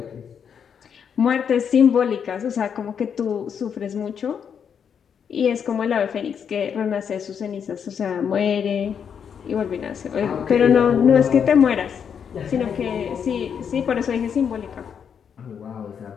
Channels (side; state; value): right; quieter; 7.5 dB